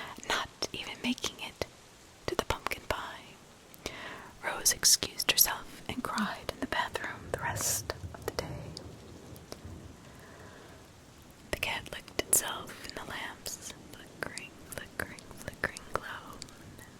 not even making it to the pumpkin pie. Rose excused herself and cried in the bathroom the rest of the day. The cat licked itself in the lamp's flickering, flickering, flickering glow.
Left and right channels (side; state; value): both; identical; correlation 1.00